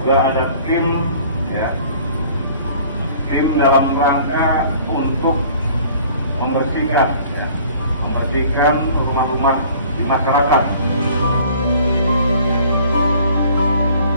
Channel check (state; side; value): inverted; both; correlation -0.52